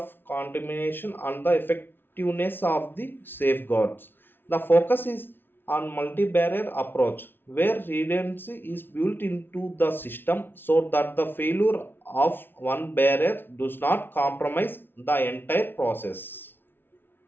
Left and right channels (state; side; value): late; right; 0.10 ms